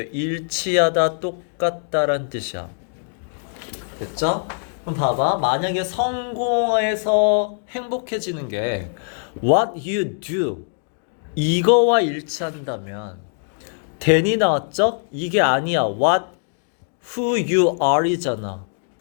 일치하다, 똑같다란 뜻이야. 됐죠? 그럼 봐봐. 만약에 성공해서 행복해지는 게 what you do 이거와 일치한다면 then이 나왔죠? 이게 아니야. what who you are 이잖아.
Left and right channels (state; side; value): silent; right; digital silence